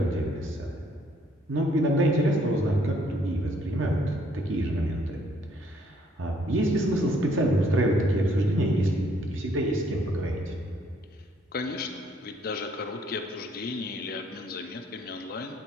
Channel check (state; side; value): normal; both; correlation 0.66